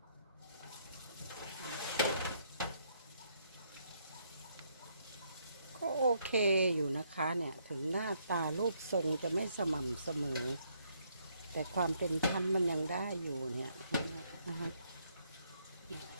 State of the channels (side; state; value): both; inverted; correlation -0.72